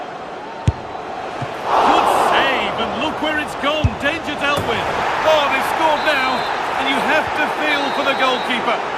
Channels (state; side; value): identical; both; correlation 1.00